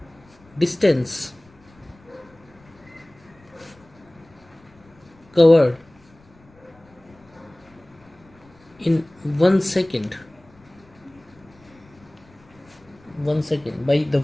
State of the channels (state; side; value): noise; left; rumble, 28 dB below the sound